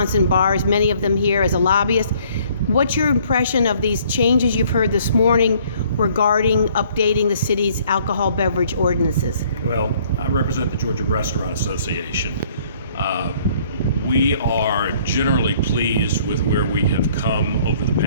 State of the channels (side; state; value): both; inverted; correlation -0.60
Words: and bars, many of them here as a lobbyist. What's your impression of these changes you've heard this morning regarding updating the city's alcohol beverage ordinances? Well, I represent the Georgia Restaurant Association. We are generally pleased with where we have come over the